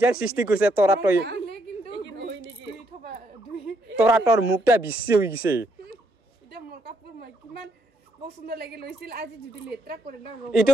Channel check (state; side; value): normal; both; correlation 0.74